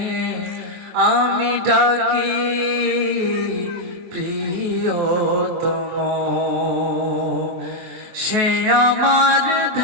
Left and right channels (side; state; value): left; late; 23 ms